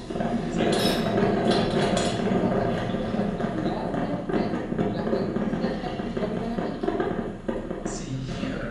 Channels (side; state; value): both; identical; correlation 1.00